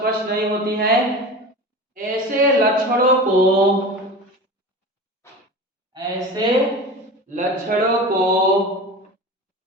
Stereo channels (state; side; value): normal; both; correlation 0.31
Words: नहीं होती है। ऐसे लक्षणों को